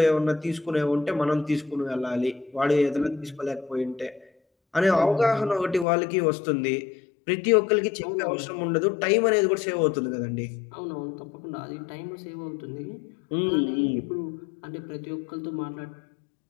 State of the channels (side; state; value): right; drops out; at 5.9 s